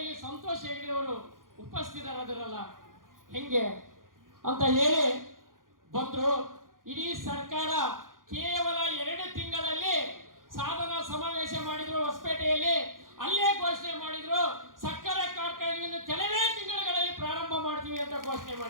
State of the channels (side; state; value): left; late; 0.90 ms